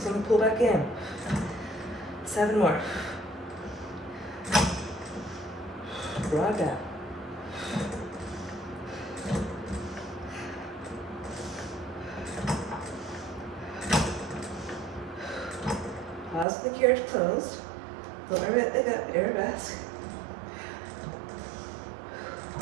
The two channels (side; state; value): left; drops out; at 16.4 s